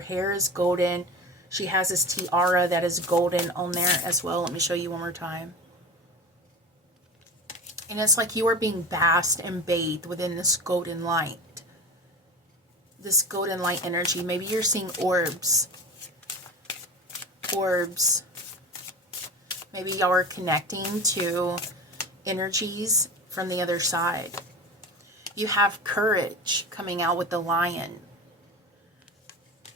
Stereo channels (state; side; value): normal; both; correlation 0.31